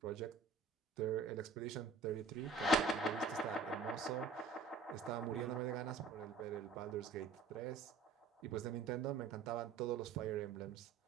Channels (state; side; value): quieter; left; 4.3 dB